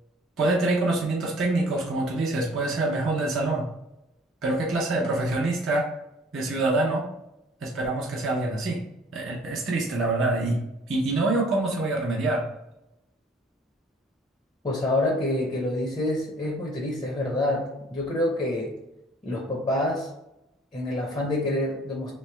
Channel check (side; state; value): both; normal; correlation 0.53